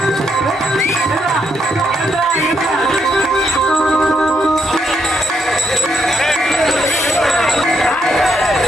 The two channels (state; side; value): normal; both; correlation 0.77